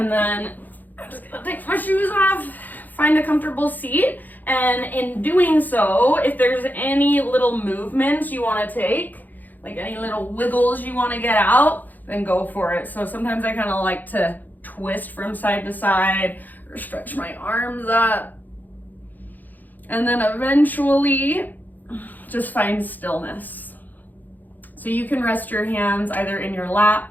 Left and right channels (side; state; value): right; late; 0.084 ms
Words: then I'm just gonna take my shoes off, find a comfortable seat, and in doing so, if there's any little movements you want to take, like any little wiggles you want to get out, then go for it. So sometimes I kind of like to twist from side to side or stretch my arms up. And then eventually just find stillness. So you can rest your hands either in your